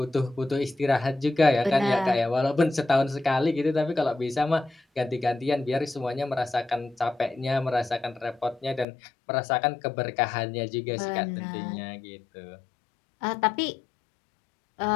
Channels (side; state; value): right; drops out; at 8.8 s